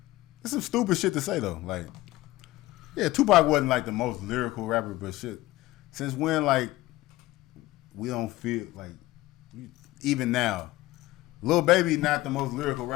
It's some stupid shit to say though. Like, yeah, Tupac wasn't like the most lyrical rapper, but shit. Since when, like, we don't feel like, even now, Lil Baby not the most lyrical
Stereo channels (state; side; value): quieter; right; 17.8 dB